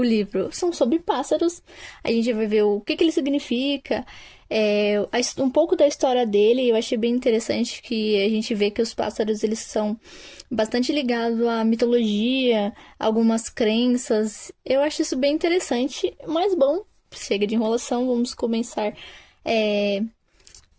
livro. São sobre pássaros, a gente vai ver o que ele significa, um pouco da história dele. Eu achei bem interessante que a gente vê que os pássaros eles são bastante ligados à mitologia, algumas crenças. Eu acho isso bem interessante, mas bom, chega de enrolação, vamos começar é,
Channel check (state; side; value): identical; both; correlation 1.00